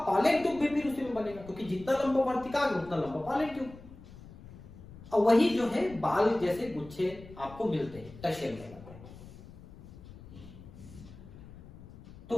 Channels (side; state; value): left; noise; rumble, 18 dB below the sound